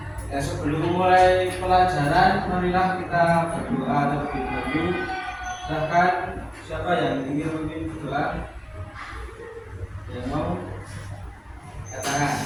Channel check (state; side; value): identical; both; correlation 1.00